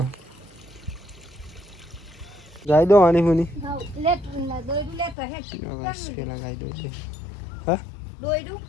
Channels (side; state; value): right; drops out; at 5.2 s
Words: ગાય દો આની હુની પેલા ગાય દો એટલે હા